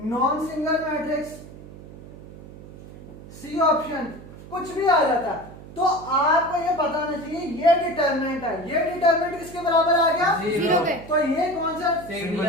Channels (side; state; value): right; noise; hum, 17 dB below the sound